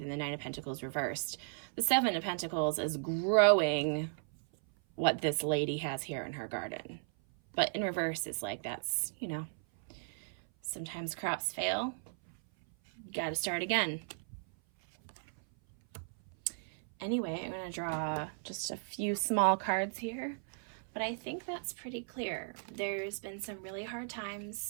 the Nine of Pentacles reversed. The Seven of Pentacles is growing what this lady has here in her garden. But in reverse, it's like that's, you know, sometimes crops fail. You got to start again. Anyway, I'm going to draw just a few small cards here, but I think that's pretty clear. There's been some really hard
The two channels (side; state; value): left; silent; 54 dB below the other